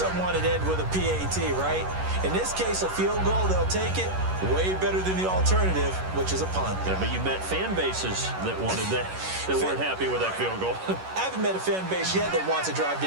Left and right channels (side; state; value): left; late; 11 ms